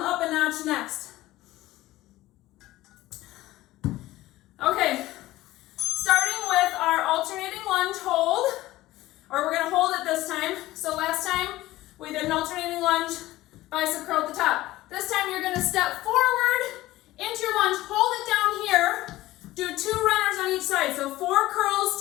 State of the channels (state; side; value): quieter; right; 16.9 dB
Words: a notch next. Okay. Starting with our alternating lunge hold, or we're going to hold it this time. So last time we did an alternating lunge, bicep curl at the top. This time you're going to step forward into your lunge, hold it down here, do 2 runners on each side. So 4